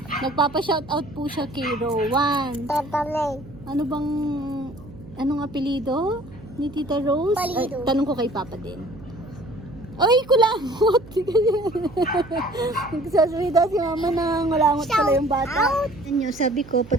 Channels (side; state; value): right; noise; hum, 18 dB below the sound